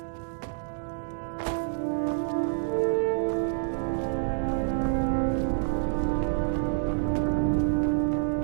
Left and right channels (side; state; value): left; silent; digital silence